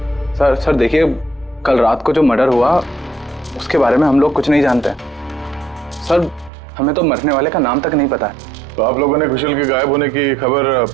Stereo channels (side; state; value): left; drops out; at 6.5 s